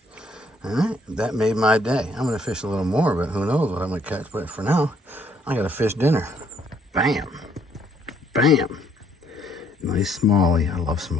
All right, that made my day. I'm gonna fish a little more, but who knows what I'm gonna catch. But for now, I got a fish dinner. Bam, bam. Nice smallie. I love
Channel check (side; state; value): both; normal; correlation 0.67